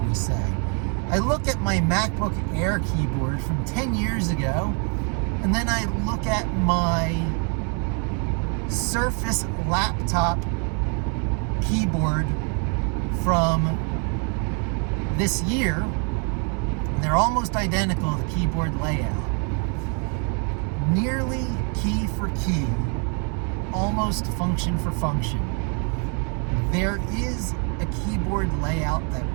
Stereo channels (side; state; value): left; quieter; 39.2 dB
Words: we say. I look at my MacBook Air keyboard from 10 years ago, and then I look at my Surface laptop keyboard from this year. They're almost identical, the keyboard layout. Nearly key for key, almost function for function. There is a keyboard layout that